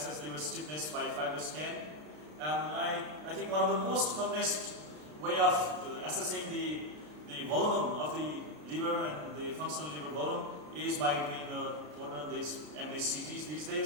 liver stiffness by FibroScan. I think one of the most commonest way of assessing the volume of the liver and the functional liver volume is by doing what are these MDCTs these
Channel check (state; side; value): late; left; 33 ms